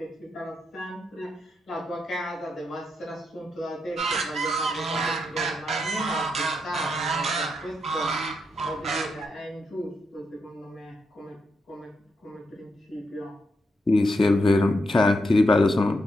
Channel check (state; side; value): normal; both; correlation 0.82